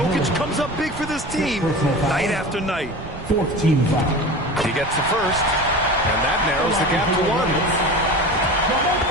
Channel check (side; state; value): right; noise; rumble, 13 dB below the sound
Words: comes up big for this team night after night. 4th team foul. He gets the first, and that narrows the gap to 1.